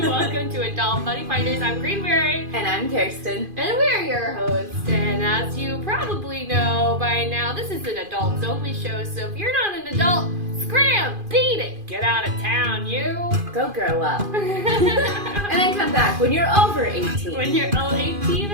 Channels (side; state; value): left; late; 2.5 ms